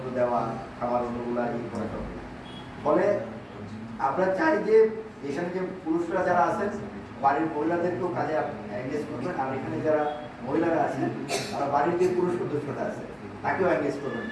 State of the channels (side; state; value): both; identical; correlation 1.00